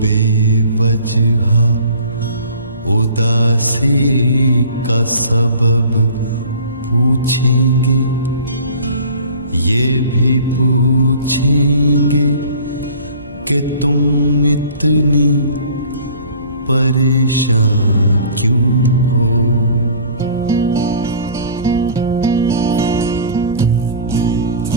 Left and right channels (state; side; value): inverted; both; correlation -0.47